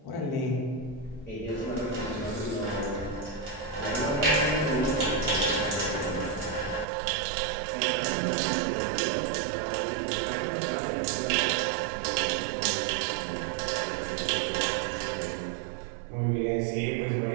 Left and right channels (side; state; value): left; drops out; at 6.9 s